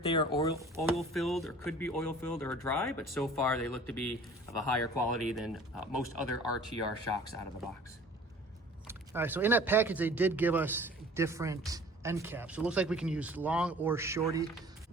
they are oil filled or could be oil filled or dry, but so far they look to be of a higher quality than most other RTR shocks out of the box. All right, so in that package, they did give us different end caps. So it looks like we can use long or shorty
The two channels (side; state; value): both; normal; correlation 0.48